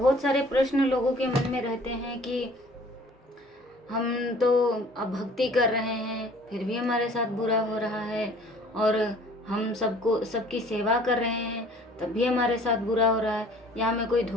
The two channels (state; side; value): normal; both; correlation 0.52